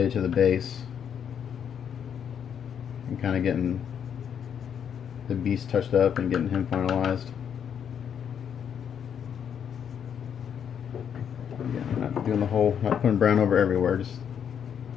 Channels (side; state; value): right; quieter; 8.2 dB